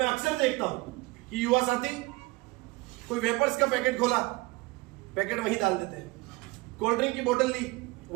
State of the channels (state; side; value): quieter; left; 23.0 dB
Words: अक्सर देखता हूं कि युवा साथी कोई वेपर्स का पैकेट खोला, पैकेट वहीं डाल देते हैं, कोल्ड ड्रिंक की बोतल ली,